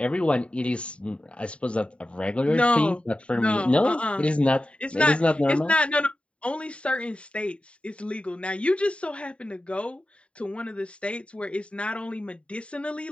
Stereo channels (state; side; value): late; right; 0.060 ms